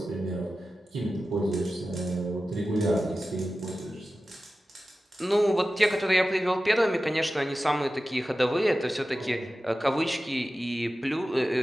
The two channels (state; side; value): normal; both; correlation 0.94